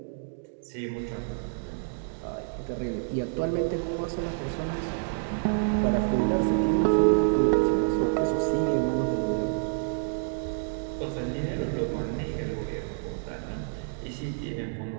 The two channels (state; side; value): silent; left; digital silence